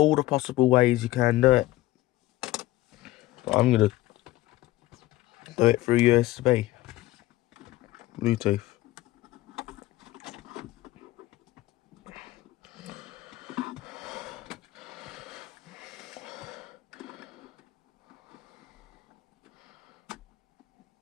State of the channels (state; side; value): quieter; right; 17.0 dB